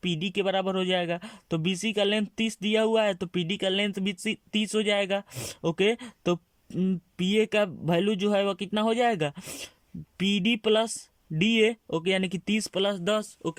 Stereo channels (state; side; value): identical; both; correlation 1.00